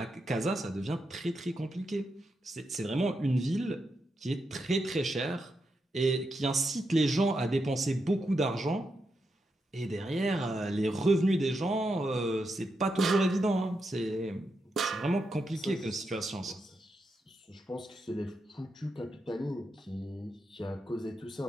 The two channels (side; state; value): both; normal; correlation 0.85